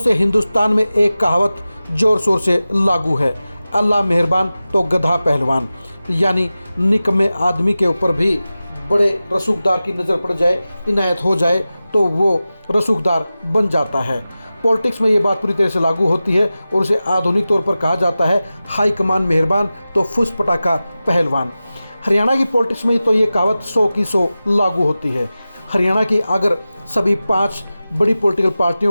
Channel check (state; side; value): inverted; both; correlation -0.95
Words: हिंदुस्तान में एक कहावत जोर शोर से लागू है, अल्लाह मेहरबान तो गधा पहलवान। यानी निकम्मे आदमी के ऊपर भी बड़े रसूखदार की नज़र पड़ जाए, इनायत हो जाए तो वो रसूखदार बन जाता है। पॉलिटिक्स में ये बात पूरी तरह से लागू होती है और उसे आधुनिक तौर पर कहा जाता है हाई कमान मेहरबान तो फुस पटाखा पहलवान। हरियाणा की पॉलिटिक्स में तो ये कहावत 100 की 100 लागू होती है। हरियाणा की अगर सभी 5 बड़ी पॉलिटिकल